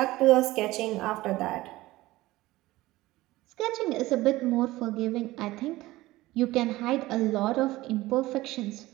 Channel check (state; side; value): quieter; left; 18.1 dB